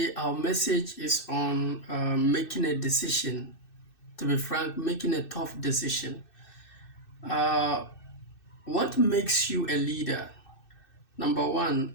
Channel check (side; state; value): right; late; 2.6 ms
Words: our message is on making a decision. To be frank, making a tough decision. Uh, what makes you a leader? Number